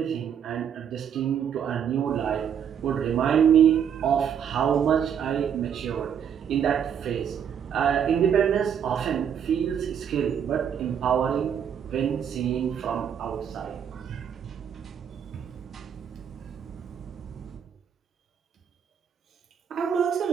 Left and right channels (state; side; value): quieter; left; 8.3 dB